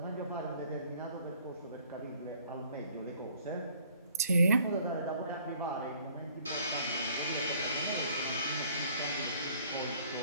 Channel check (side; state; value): both; inverted; correlation -0.59